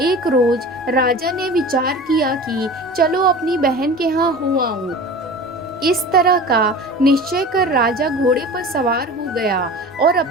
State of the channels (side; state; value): both; normal; correlation 0.36